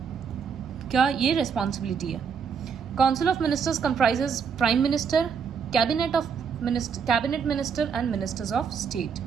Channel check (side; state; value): left; quieter; 6.5 dB